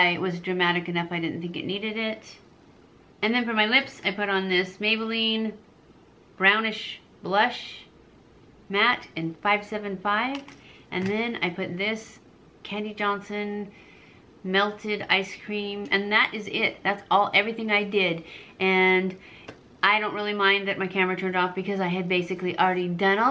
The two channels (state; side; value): identical; both; correlation 1.00